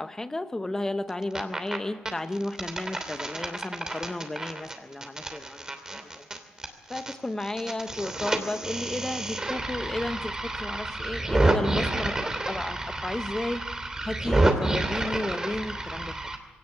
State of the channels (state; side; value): normal; both; correlation 0.91